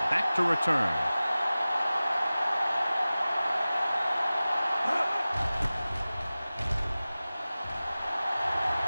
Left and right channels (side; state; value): both; inverted; correlation -0.97